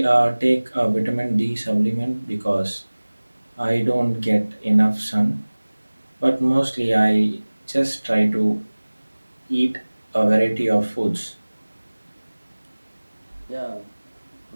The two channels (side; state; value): both; inverted; correlation -1.00